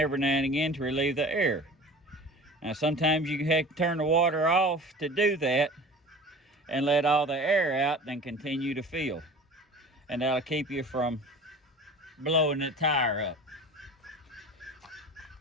now and again to relieve the air. Now sometimes you have to turn the water off to do that and let all the air out, then continue to fill. And that'll keep you from blowing the tire up.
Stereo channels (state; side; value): normal; both; correlation 0.39